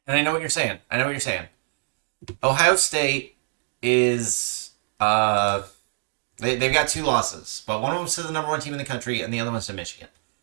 And I know what you're saying. Ohio State is they've got two losses, but one of them's to the number one team in the country, and the other one's to Michigan.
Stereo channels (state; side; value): silent; left; 61 dB below the other